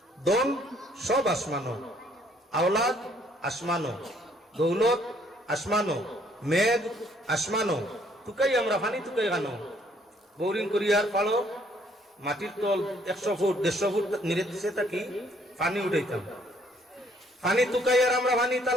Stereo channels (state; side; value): normal; both; correlation 0.64